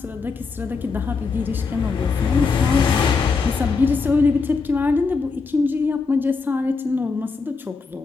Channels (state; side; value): quieter; right; 4.6 dB